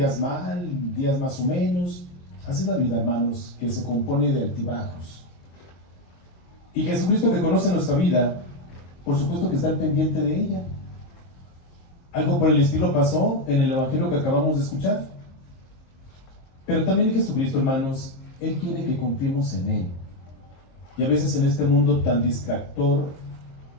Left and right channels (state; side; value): late; right; 23 ms